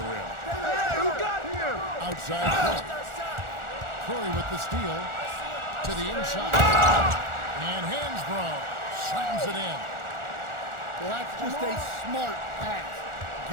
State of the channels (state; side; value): late; left; 1.4 ms